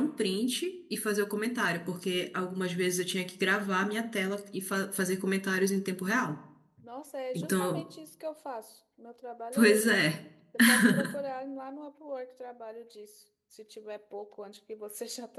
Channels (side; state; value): both; identical; correlation 1.00